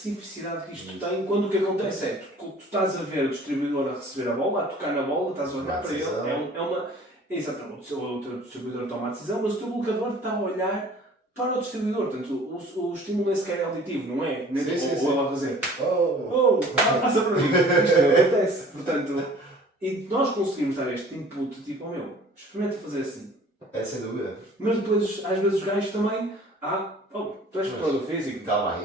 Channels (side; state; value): both; normal; correlation 0.50